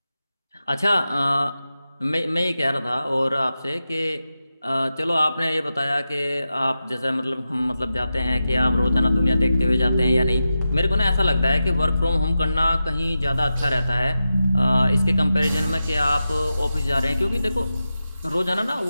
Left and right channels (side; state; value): both; inverted; correlation -0.91